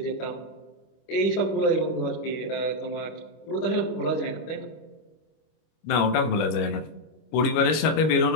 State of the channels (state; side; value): late; right; 25 ms